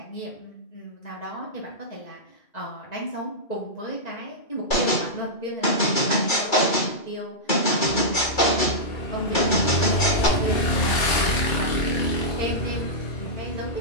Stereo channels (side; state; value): right; late; 2.3 ms